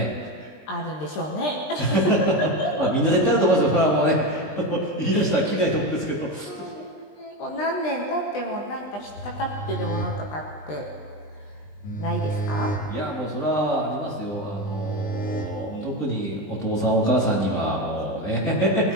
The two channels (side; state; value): right; late; 20 ms